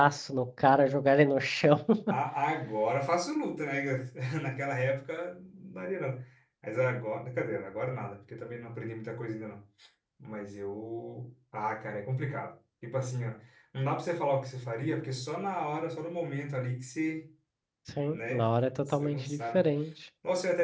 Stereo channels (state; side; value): identical; both; correlation 1.00